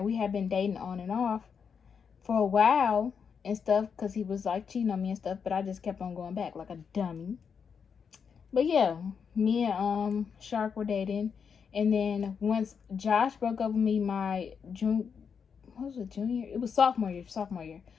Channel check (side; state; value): right; quieter; 6.5 dB